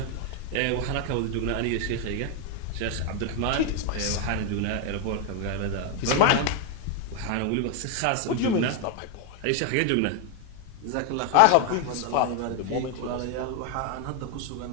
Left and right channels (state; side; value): different; both; correlation 0.01